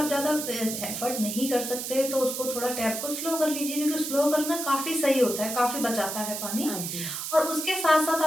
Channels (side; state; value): right; noise; hiss, 5 dB below the sound